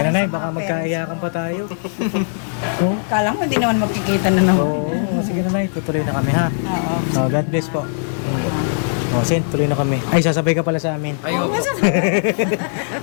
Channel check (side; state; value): right; silent; digital silence